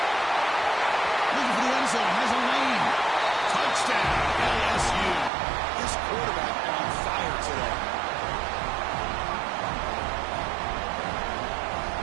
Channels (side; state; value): left; drops out; at 5.3 s